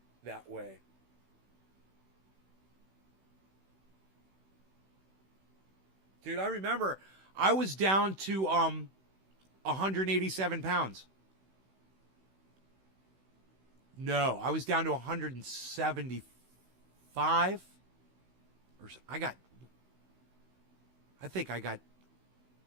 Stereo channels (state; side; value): late; left; 16 ms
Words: that way. Dude, I remember I was down to 187 pounds. No, I was down to 175. I think I got